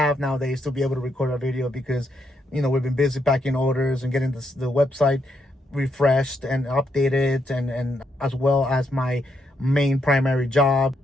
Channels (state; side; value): normal; both; correlation 0.78